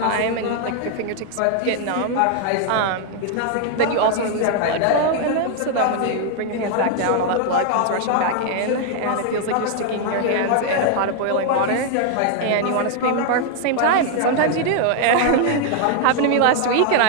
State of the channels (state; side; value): different; both; correlation 0.00